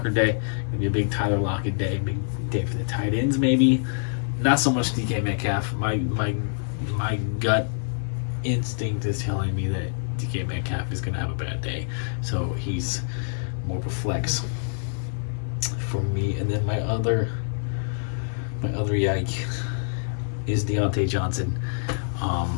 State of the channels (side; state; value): right; silent; 57 dB below the other